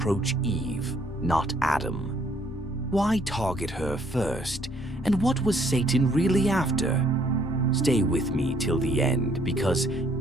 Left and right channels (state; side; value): normal; both; correlation 0.65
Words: Eve, not Adam? Why target her first? And what was Satan really after? Stay with me till the end, because